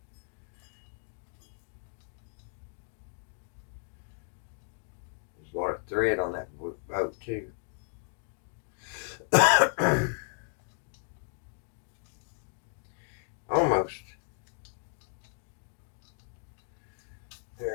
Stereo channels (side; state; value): right; silent; 55 dB below the other